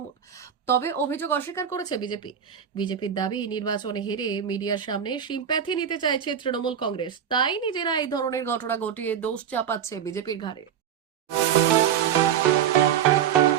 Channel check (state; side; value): quieter; left; 8.7 dB